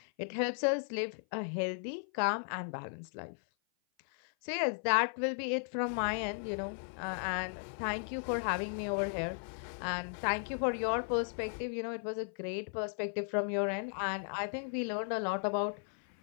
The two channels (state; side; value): silent; right; 54 dB below the other